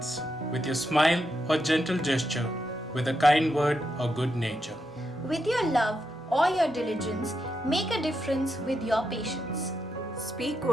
with your smile or gentle gesture, with a kind word or good nature. With your love or your diligence, make a difference with your patience. Speak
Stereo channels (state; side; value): normal; both; correlation 0.84